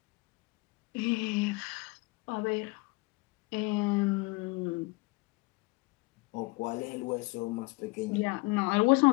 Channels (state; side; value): quieter; right; 25.0 dB